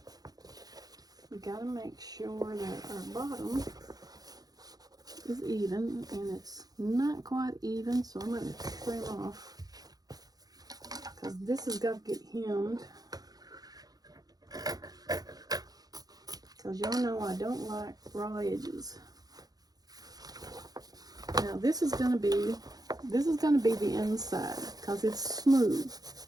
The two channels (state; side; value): late; left; 0.19 ms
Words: we got to make sure that our bottom is even, and it's not quite even, so I'm going to trim off because this has got to get hemmed, because y'all know I don't like raw edges. Now this is going to be the inside because it's smooth.